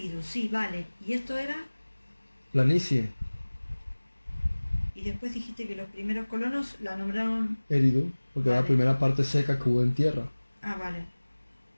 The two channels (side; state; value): both; inverted; correlation -1.00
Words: sí, vale. ¿Y esto era? Planicie. Y después dijiste que los primeros colonos la nombraron... Eridu, porque era la primera parte seca que hubo en tierra. Ah, vale.